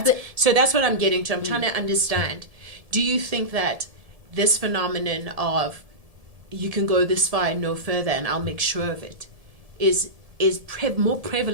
So that's what I'm getting to. I'm trying to understand. Do you think that this phenomenon of you can go this far and no further, and I'll make sure of it, is more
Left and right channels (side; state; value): left; late; 1.7 ms